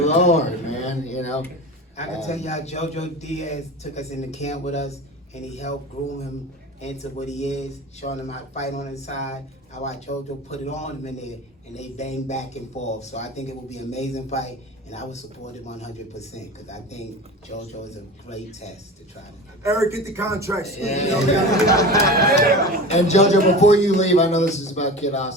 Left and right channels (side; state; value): both; normal; correlation 0.32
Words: Lord, man. I can tell y'all, JoJo Diaz took us into camp with us, and he helped groom him into what he is, showing him how to fight on his side. I watched JoJo put it on him in there, and they bang back and forth. So I think it will be an amazing fight, and I would support it 100% because I think JoJo is a great test to try to. Eric, get the contract. And JoJo, before you leave, I know this is about Kid